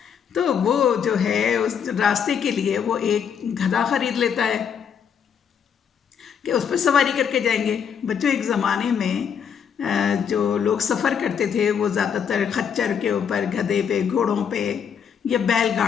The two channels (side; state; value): right; quieter; 7.6 dB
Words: तो वो जो है उस रास्ते के लिए वो एक गधा खरीद लेता है कि उस पर सवारी करके जाएंगे। बच्चों, एक ज़माने में जो लोग सफ़र करते थे वो ज़्यादातर खच्चर के ऊपर, गधे पे, घोड़ों पे या